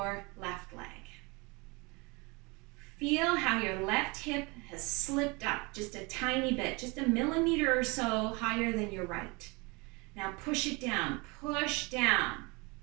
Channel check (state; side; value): quieter; left; 27.3 dB